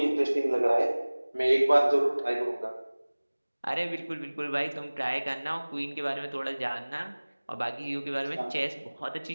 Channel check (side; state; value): both; inverted; correlation -1.00